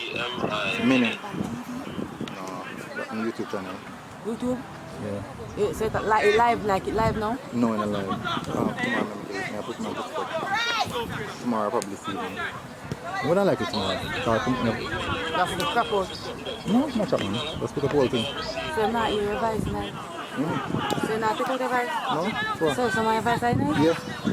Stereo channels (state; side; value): identical; both; correlation 1.00